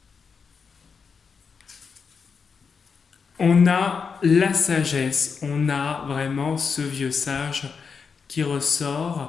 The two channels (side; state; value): right; quieter; 5.7 dB